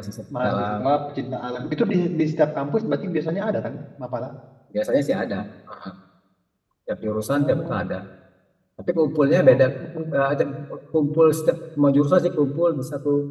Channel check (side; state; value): both; identical; correlation 1.00